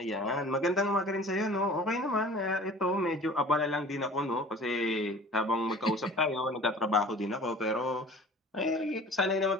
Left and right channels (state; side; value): normal; both; correlation 0.45